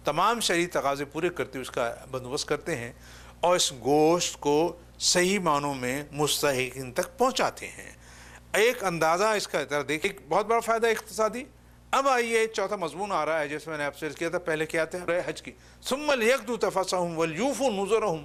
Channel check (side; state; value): both; identical; correlation 1.00